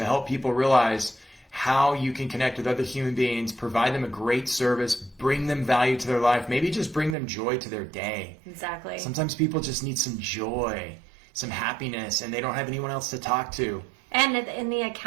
help people realize how you can connect with other human beings, provide them a great service, bring them value to their life, maybe just bring them joy to their day. Exactly. Sometimes people just need some joy, some happiness, and they don't have anyone else to talk to. And the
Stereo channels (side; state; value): left; drops out; at 7.2 s